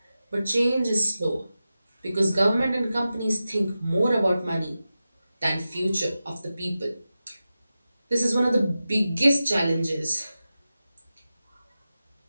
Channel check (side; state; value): both; inverted; correlation -0.93